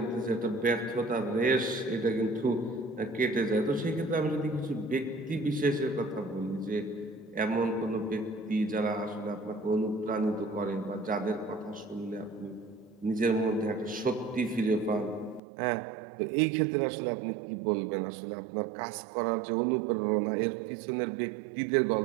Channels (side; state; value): left; drops out; at 15.4 s